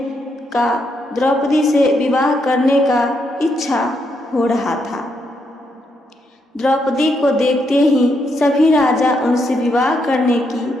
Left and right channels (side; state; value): both; normal; correlation 0.78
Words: का, द्रौपदी से विवाह करने का इच्छा हो रहा था। द्रौपदी को देखते ही सभी राजा उनसे विवाह करने